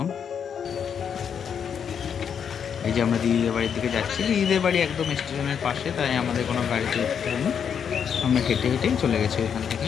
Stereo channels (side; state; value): right; quieter; 7.6 dB